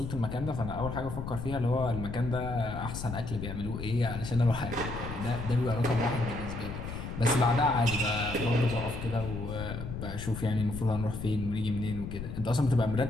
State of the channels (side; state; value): left; noise; rumble, 7 dB below the sound